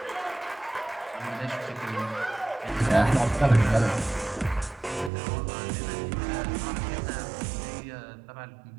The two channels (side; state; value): left; drops out; at 5.1 s